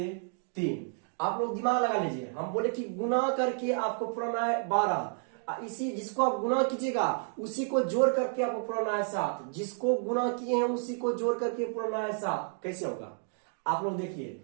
3। आप लोग दिमाग लगा लीजिए, हम बोले कि गुना करके आपको पुराना है 12, इसी जिसको आप गुना कीजिएगा उसी को जोड़ करके आपको पुराना है 7, जिसको गुना किए हैं उसी को जोड़ करके पुराना है 7। कैसे होगा आप लोग देखिए,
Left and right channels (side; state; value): left; silent; 57 dB below the other